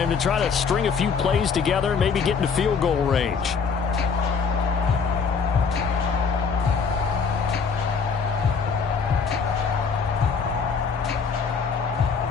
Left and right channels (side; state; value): right; quieter; 5.6 dB